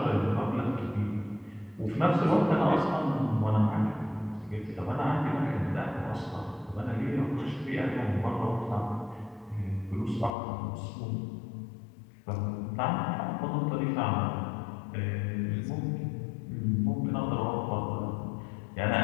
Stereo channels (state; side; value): drops out; right; at 10.3 s